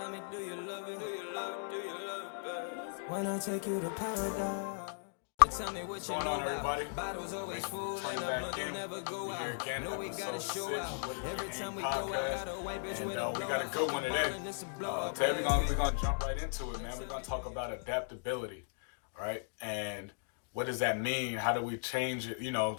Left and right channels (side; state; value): right; silent; digital silence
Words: me, do you love it? Do you love it? Do you love it, babe? When I take you to paradise. Tell me what What's going on, everybody? Bottles always Thanks full for turning and back in. never go We out. here again, No, we episode gotta 6 show of out. What is Every the Aim time we go out, podcast. gotta wipe it And with we got a a good one today. blow. Today we're gonna jump right into it, man. We're gonna talk about adaptability, all right? And what does that mean? How do we change it?